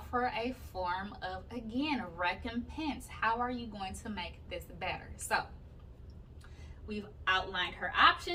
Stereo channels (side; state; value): both; identical; correlation 1.00